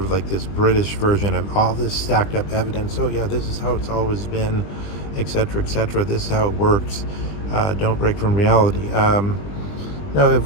like this British version of all this stacked up evidence. Oh yeah, this is how it's always been, etc., etc. This is how it works. Don't break from reality. No,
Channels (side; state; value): right; late; 20 ms